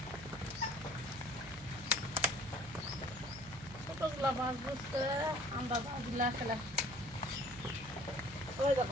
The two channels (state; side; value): noise; right; hum, 16 dB below the sound